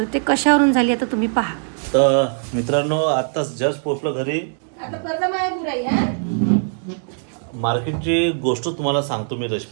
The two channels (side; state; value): left; silent; digital silence